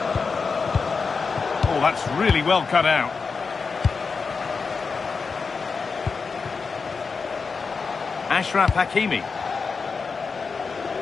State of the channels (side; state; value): right; quieter; 4.9 dB